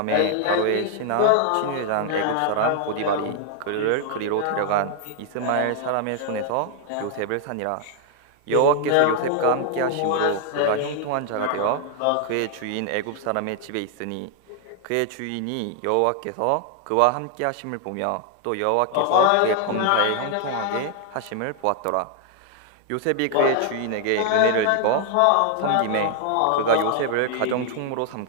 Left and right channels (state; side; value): different; both; correlation 0.00